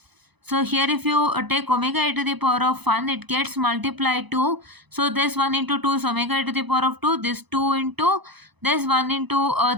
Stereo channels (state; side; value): late; left; 0.99 ms